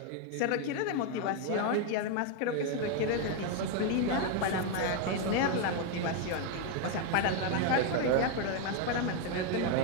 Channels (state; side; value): different; both; correlation 0.01